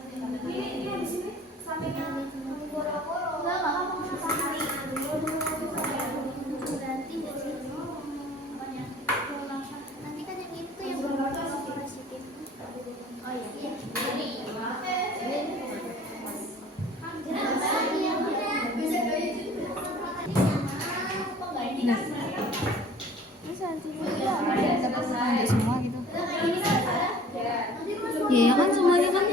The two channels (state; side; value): normal; both; correlation 0.50